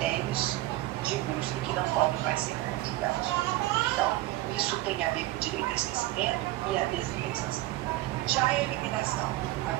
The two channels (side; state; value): left; quieter; 17.3 dB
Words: de busca que não podem mais ser conjugados. Então, isso tem a ver com o direito ao esquecimento e a desindexação. Já a eliminação, a